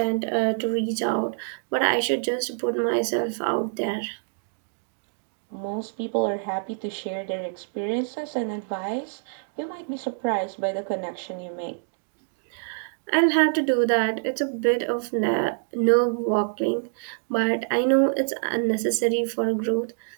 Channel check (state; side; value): silent; left; digital silence